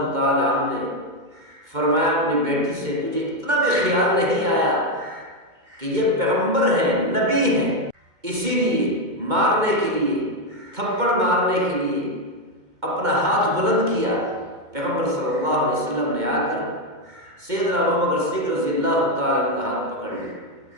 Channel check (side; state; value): left; late; 2.2 ms